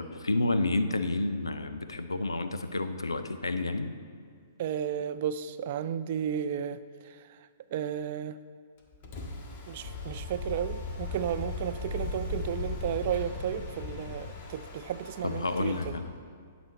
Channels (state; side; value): inverted; both; correlation -0.60